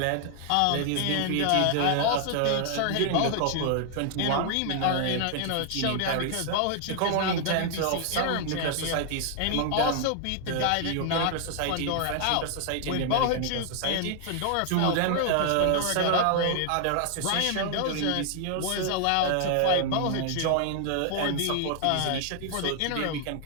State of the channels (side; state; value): both; different; correlation 0.00